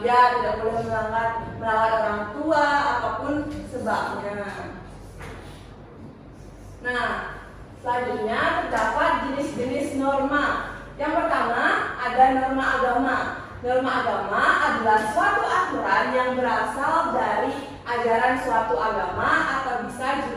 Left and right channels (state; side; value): identical; both; correlation 1.00